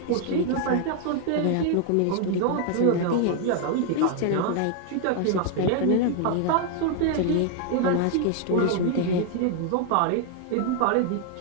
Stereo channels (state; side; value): different; both; correlation 0.00